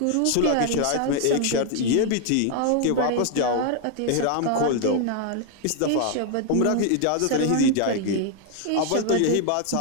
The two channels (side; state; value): both; different; correlation 0.00